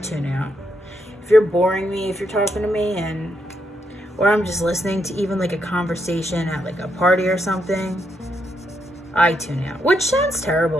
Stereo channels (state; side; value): normal; both; correlation 0.79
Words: tune out. If you're boring me, if you're talking to me, or I'm just listening to even like a conversation at like a party or something, I tune out. Which sounds